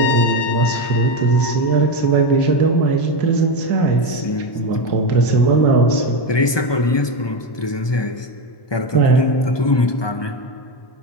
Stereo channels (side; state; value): right; late; 1.2 ms